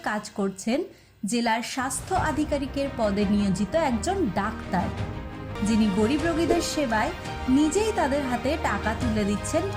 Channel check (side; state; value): both; identical; correlation 1.00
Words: কাজ করছেন জেলার স্বাস্থ্য আধিকারিকের পদে নিয়োজিত একজন ডাক্তার, যিনি গরিব রোগীদের সেবায় নিজেই তাদের হাতে টাকা তুলে দিচ্ছেন